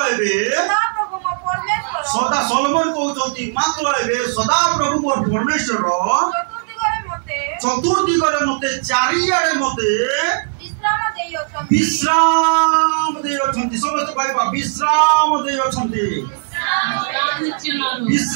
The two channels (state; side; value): silent; left; digital silence